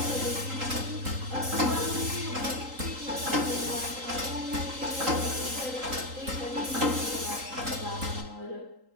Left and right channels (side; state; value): left; late; 3.8 ms